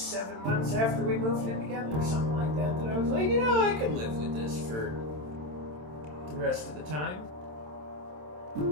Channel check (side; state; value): left; late; 27 ms